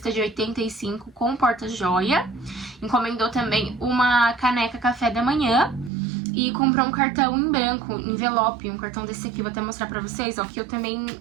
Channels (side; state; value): left; drops out; at 5.9 s